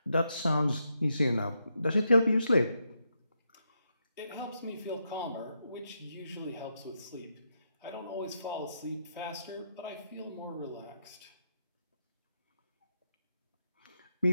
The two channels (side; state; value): both; inverted; correlation -0.82